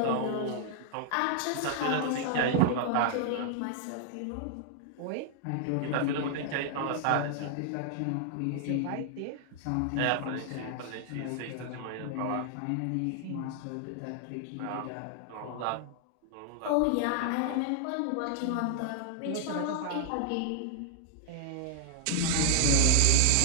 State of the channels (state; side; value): different; both; correlation 0.00